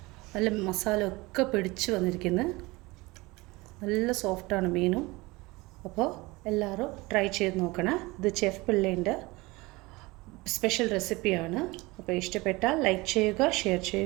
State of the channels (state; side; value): quieter; left; 22.6 dB